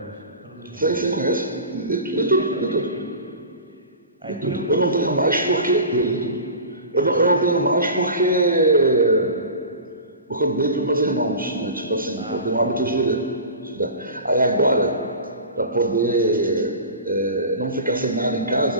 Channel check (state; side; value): inverted; both; correlation -0.35